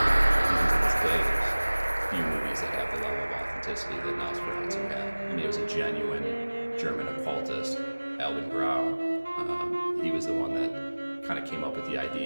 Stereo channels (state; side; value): inverted; both; correlation -1.00